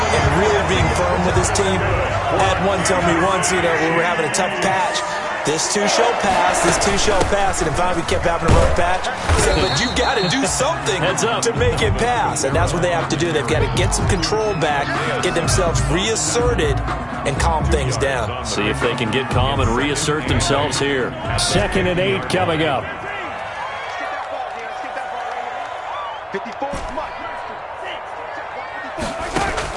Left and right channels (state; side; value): identical; both; correlation 1.00